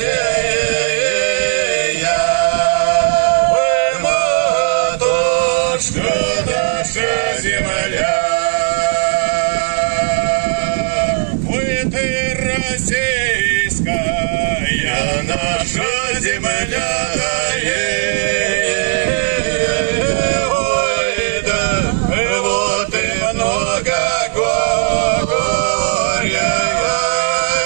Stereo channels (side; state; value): left; silent; 59 dB below the other